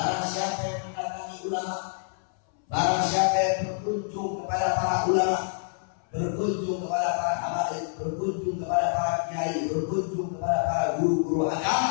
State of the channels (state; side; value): silent; right; 60 dB below the other